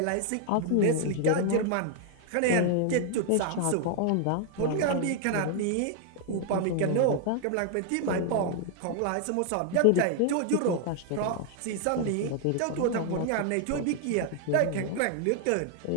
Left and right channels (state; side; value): different; both; correlation 0.00